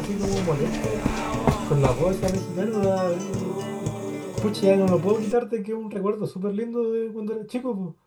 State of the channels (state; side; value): identical; both; correlation 1.00